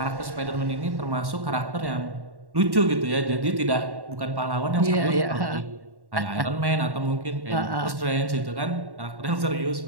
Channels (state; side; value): late; left; 1.1 ms